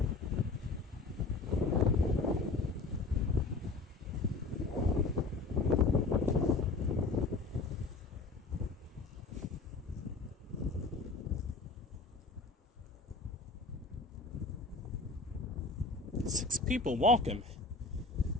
6 people. Welcome.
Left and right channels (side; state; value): right; quieter; 3.7 dB